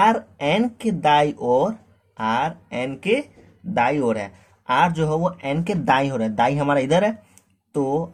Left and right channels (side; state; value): both; identical; correlation 1.00